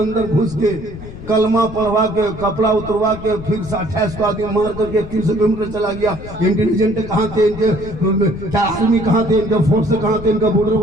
घुस के कलमा पढ़वा के, कपड़ा उतरवा के, फिर 28 को आदमी मार करके 300 किलोमीटर चला गया। इंटेलिजेंट कहाँ थे इनके, क्या आर्मी कहाँ थे, इनका फोर्स कहाँ थे, इनका बॉर्डर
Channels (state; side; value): noise; left; rumble, 13 dB below the sound